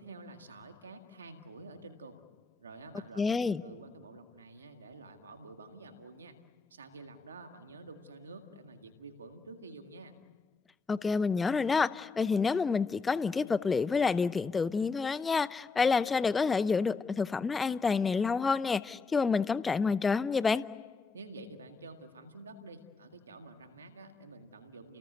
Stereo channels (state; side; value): quieter; right; 4.5 dB